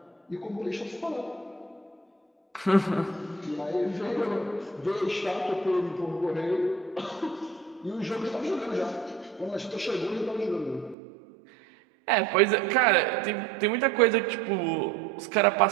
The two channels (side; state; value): left; drops out; at 11.0 s